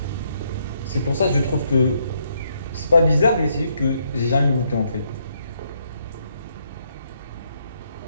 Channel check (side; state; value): both; inverted; correlation -0.74